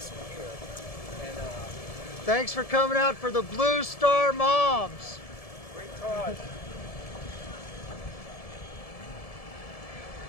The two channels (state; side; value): late; right; 1.7 ms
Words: Thanks for coming out for the Blue Star Moms. Great cause.